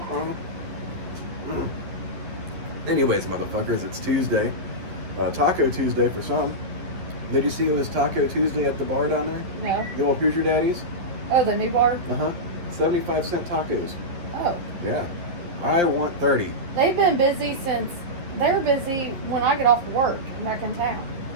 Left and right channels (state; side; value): late; left; 11 ms